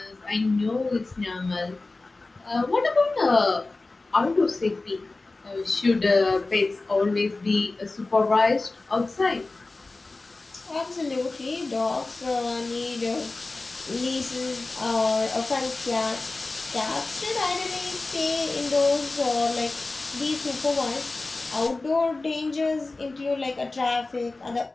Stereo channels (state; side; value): quieter; right; 3.3 dB